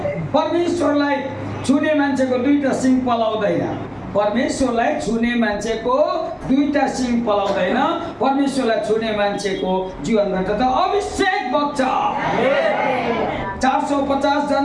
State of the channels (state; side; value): identical; both; correlation 1.00